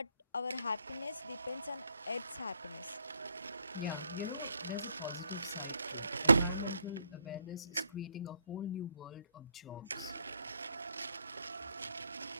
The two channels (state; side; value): inverted; both; correlation -0.73